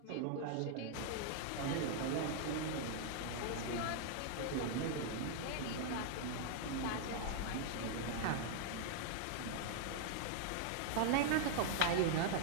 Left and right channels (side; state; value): both; different; correlation -0.01